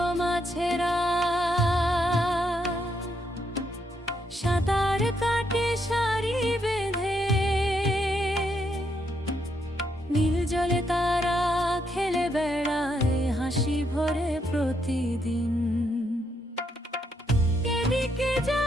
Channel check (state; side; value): normal; both; correlation 0.77